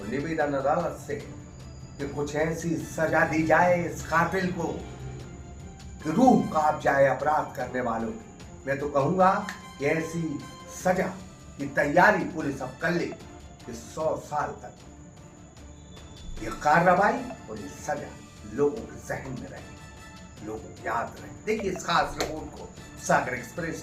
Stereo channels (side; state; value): both; identical; correlation 1.00